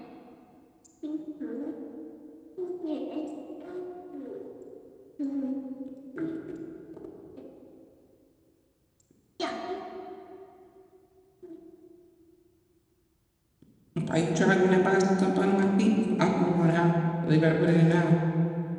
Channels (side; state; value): both; identical; correlation 1.00